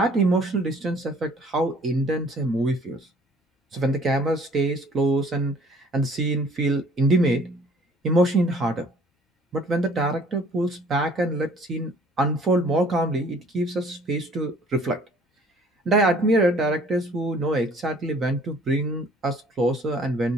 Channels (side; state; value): both; normal; correlation 0.55